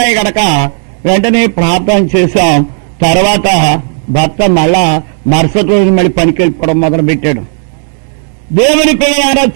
గనక వెంటనే ప్రార్థన చేశాం. తర్వాత భర్త మళ్ళా మరుసటి రోజు మళ్ళీ పనికి వెళ్ళిపోవడం మొదలు పెట్టాడు. దేవుని పిల్లలారా,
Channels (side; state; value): left; silent; 61 dB below the other